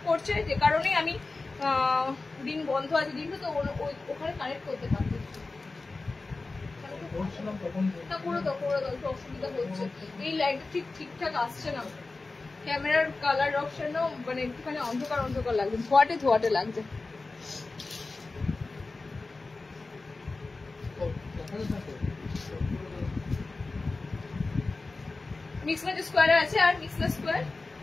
করছে, যে কারণে আমি রিং বন্ধ আছে। রিংটা তো ওখানে কানেক্ট করতে পারবো, করে দাও একটু অসুবিধা হচ্ছে। এই লাইটটা ঠিকঠাক আসছে না, ক্যামেরার কালার অপশনও মানে একটুখানি অন্ধকার অন্ধকার লাগছে, ধোয়াটে লাগছে। মিক্স ম্যাচ স্কোয়ারে আছে, আর মিক্স ম্যাচ স্কোয়ার।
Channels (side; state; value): right; quieter; 3.6 dB